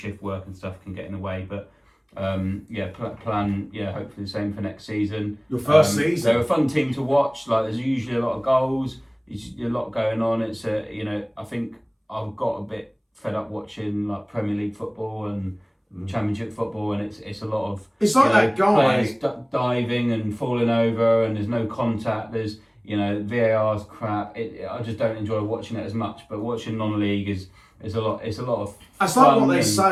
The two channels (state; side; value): identical; both; correlation 1.00